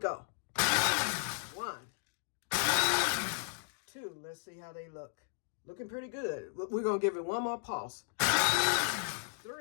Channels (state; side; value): silent; right; digital silence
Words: 1, 2. Let's see how they look. Looking pretty good. We're going to give it one more pulse.